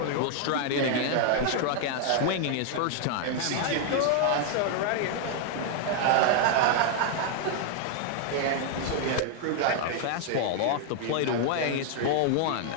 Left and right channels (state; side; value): different; both; correlation 0.00